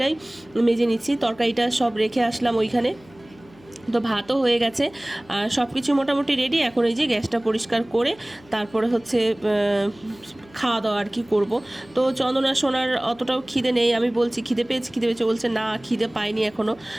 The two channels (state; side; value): noise; left; hum, 26 dB below the sound